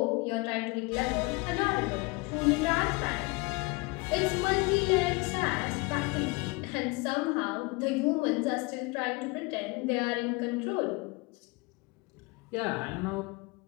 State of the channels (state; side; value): quieter; right; 26.7 dB